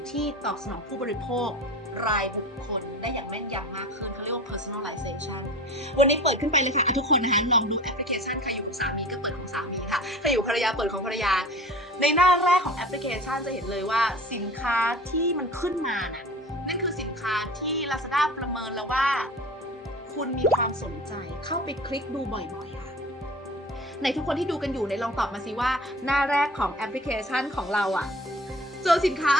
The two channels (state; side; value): normal; both; correlation 0.40